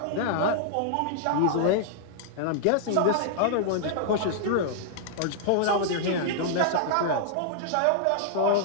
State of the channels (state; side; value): different; both; correlation -0.01